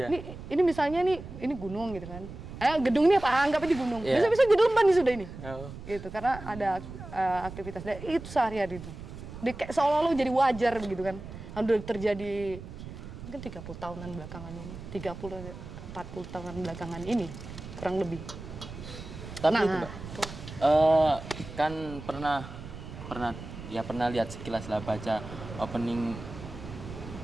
Ini misalnya ini gunung gitu kan. Gedung ini anggap aja gunung. Iya. Bisa-bisa Gedelman nih sudah ini. Oh. Gitu karena ada aktivitas dan itu sehari-hari itu. Kayak seolah-olah jadi wajar begitu kan. Udah terjadi mungkin 30 tahunan belakangan ini. 40 tahunan belakangan ini kurang lebih. Tapi Nah, itu Mbak, kan pernah lihat sekilas lah baca opening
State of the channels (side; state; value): right; noise; rumble, 12 dB below the sound